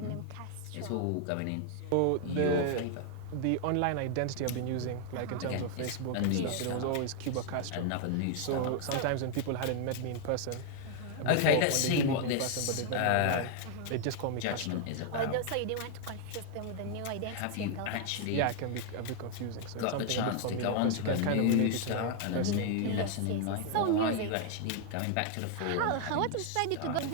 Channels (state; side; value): different; both; correlation 0.00